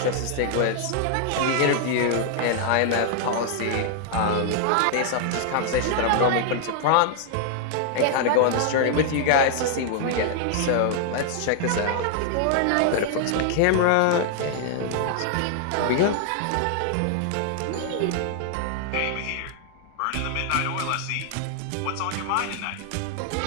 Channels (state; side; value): different; both; correlation 0.00